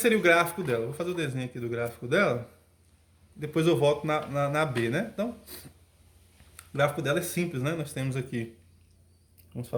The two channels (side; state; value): both; identical; correlation 1.00